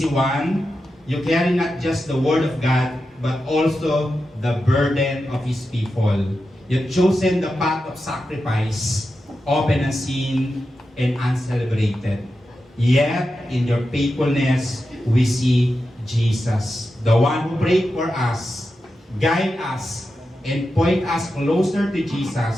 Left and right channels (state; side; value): normal; both; correlation 0.90